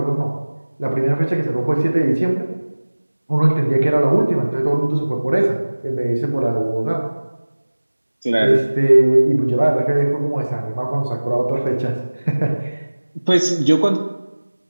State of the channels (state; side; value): inverted; both; correlation -1.00